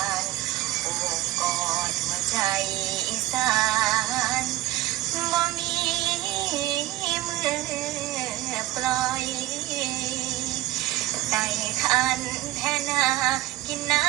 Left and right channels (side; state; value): left; quieter; 16.1 dB